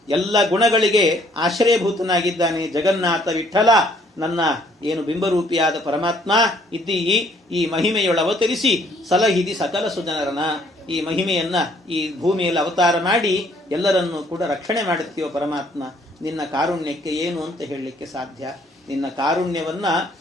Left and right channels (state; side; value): normal; both; correlation 0.62